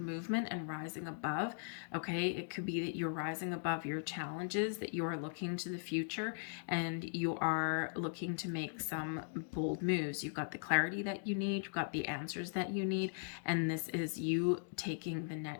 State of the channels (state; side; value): silent; right; digital silence